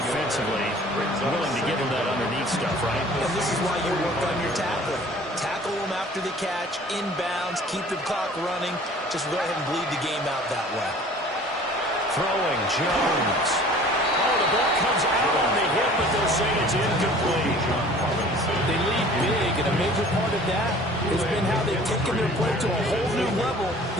willing to give them that underneath stuff, right? And this is why you work on your tackling. Tackle them after the catch, inbounds, keep the clock running. Just go ahead and bleed the game out that way. Throwing, Jones. Oh, the ball comes out on the hip, but they'll say it's incomplete. They lead big, and a major part of that has been how they've taken their play to a whole new level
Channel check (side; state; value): both; normal; correlation 0.49